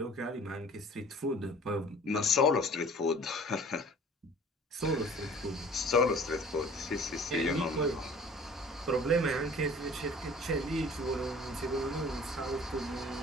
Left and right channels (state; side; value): normal; both; correlation 0.48